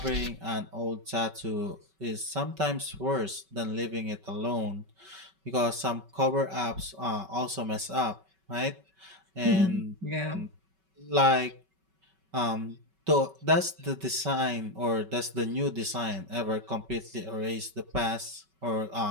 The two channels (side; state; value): left; late; 5.3 ms